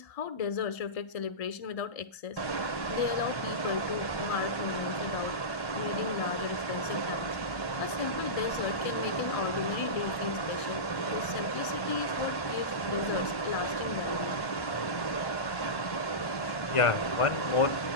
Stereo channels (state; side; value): late; right; 1.1 ms